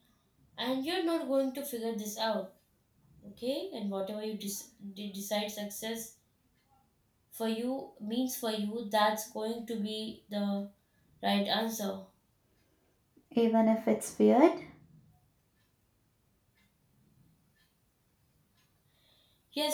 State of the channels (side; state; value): both; identical; correlation 1.00